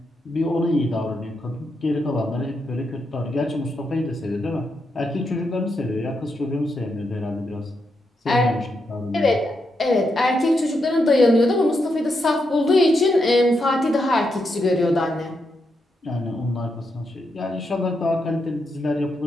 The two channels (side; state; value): both; normal; correlation 0.83